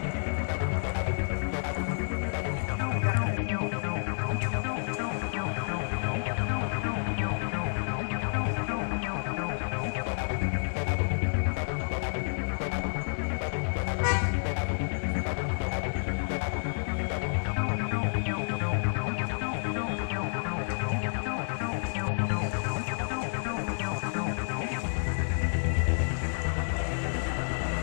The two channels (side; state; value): right; silent; 58 dB below the other